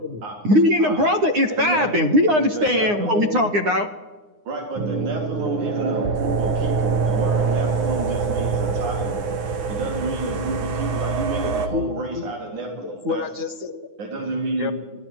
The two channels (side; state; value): left; late; 9.7 ms